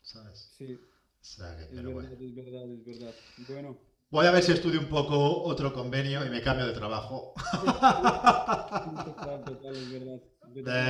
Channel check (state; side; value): identical; both; correlation 1.00